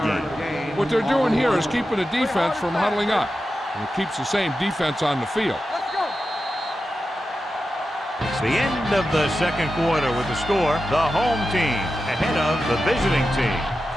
gain. What they're doing here is keeping the defense from huddling up. And it keeps the same defense on the field. Let's go! It's the end of the second quarter with the score. The home team ahead of the visiting team,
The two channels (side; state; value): both; normal; correlation 0.91